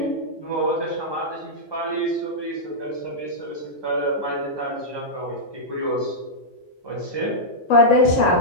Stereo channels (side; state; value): both; normal; correlation -0.10